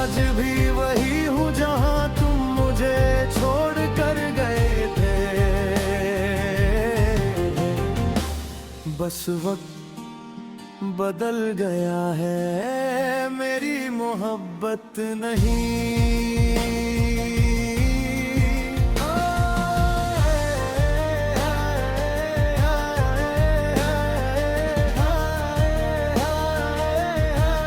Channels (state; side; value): identical; both; correlation 1.00